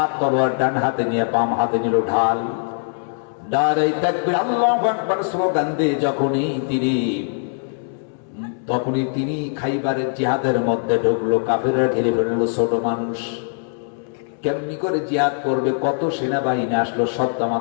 তলোয়ার ডান হাতে নিয়ে বাম হাতে নিল ঢাল। নারে তাকবীর, আল্লাহু আকবার স্লোগান দিয়ে তখনই তিনি খাইবারের জিহাদের মধ্যে ঢুকলো। কাফিররা ঘিরে ফেললো। ছোট মানুষ কেমনি করে জিহাদ করবে? কত সেনাবাহিনী আসলো, সব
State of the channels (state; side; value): silent; right; 65 dB below the other